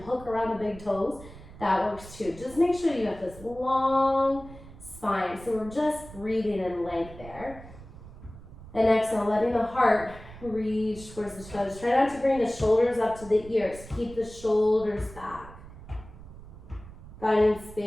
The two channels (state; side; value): noise; right; rumble, 17 dB below the sound